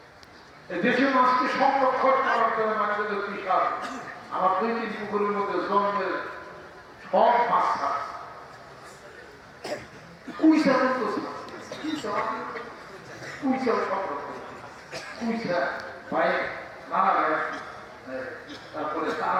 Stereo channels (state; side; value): identical; both; correlation 1.00